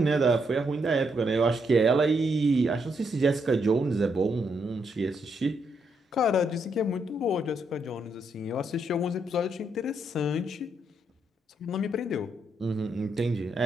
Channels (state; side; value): normal; both; correlation 0.77